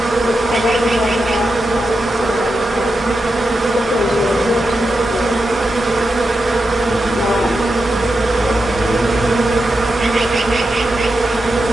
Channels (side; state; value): both; normal; correlation 0.88